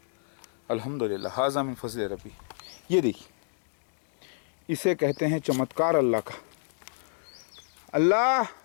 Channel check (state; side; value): silent; right; digital silence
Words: الحمدللہ. ھذا من فضل ربی. یہ دیکھیے، اسے کہتے ہیں چمتکار اللہ کا. اللہ